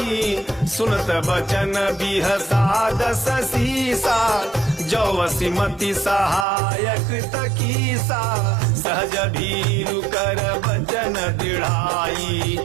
सुनत बचन बिहसा दस सीसा, जौवसी मति सहायक तकीसा। सहज भीरु कर बचन दृढ़ाई,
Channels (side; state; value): left; drops out; at 6.5 s